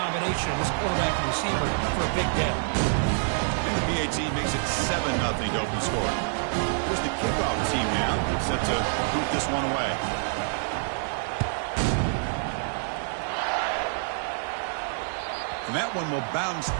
of this quarterback and receiver for a big day. And the BAT makes it 7-0 to open score. Here's the kickoff team now, set to boot this one away. And that one will bounce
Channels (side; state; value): left; silent; digital silence